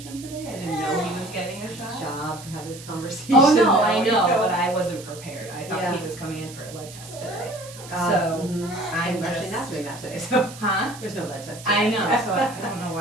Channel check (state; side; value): noise; right; hiss, 16 dB below the sound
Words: today. I didn't know he was getting a shot. Job to have this conversation. Oh no, I know, but I wasn't prepared. I thought Yeah. he was coming in for a blood test today. I'm I'm actually just not doing that today, so huh? there's no blood test. I know, so I don't know